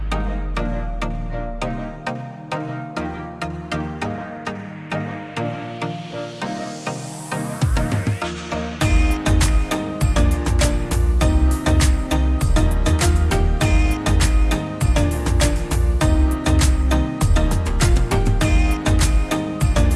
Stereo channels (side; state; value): both; identical; correlation 1.00